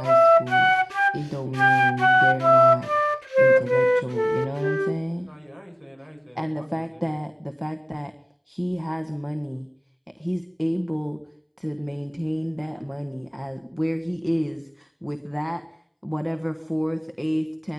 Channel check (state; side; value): identical; both; correlation 1.00